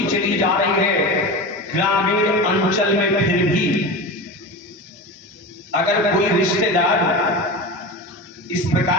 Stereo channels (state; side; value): normal; both; correlation 0.27